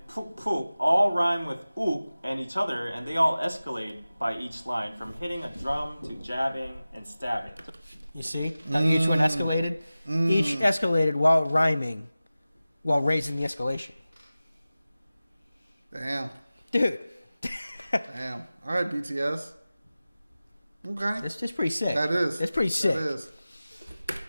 푹푹 all rhyme with uk and each other, and they all escalate by each line, from hitting a drum to jabbing and stabbing. You see how each one escalated? Each escalated while rhyming, while raising the escalation. Damn. Dude. Damn. All right, BTS. Okay. That's pretty sick. That is. That's pretty sick. That is.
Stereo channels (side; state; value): both; inverted; correlation -0.96